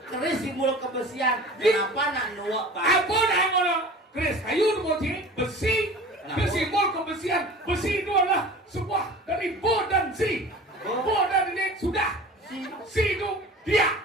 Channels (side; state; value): both; normal; correlation 0.40